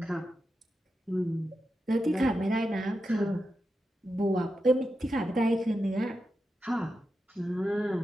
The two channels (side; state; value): both; normal; correlation 0.89